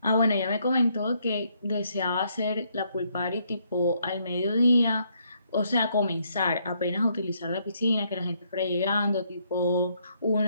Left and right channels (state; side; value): inverted; both; correlation -0.72